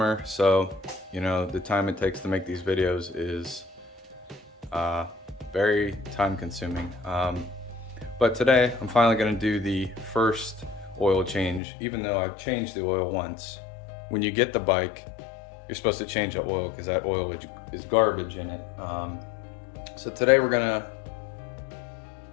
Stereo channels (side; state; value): right; drops out; at 11.6 s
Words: so you know, the time it takes to make these videos is very time consuming. But today, I'm finally gonna do the first oil change, even though I've changed the oil once. When you get the bike, you're supposed to change the oil because that oil is garbage in it. So today we're gonna